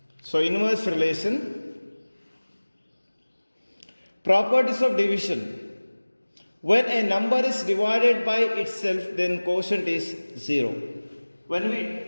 So inverse relation. Properties of division. When a number is divided by itself, then quotient is 0. When we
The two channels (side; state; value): both; inverted; correlation -1.00